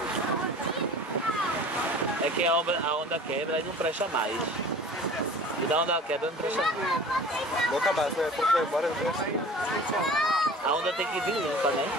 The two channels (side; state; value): both; normal; correlation 0.43